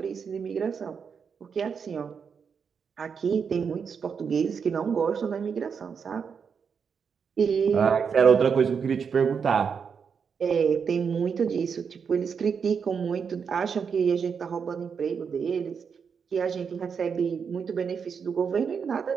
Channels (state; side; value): quieter; left; 6.4 dB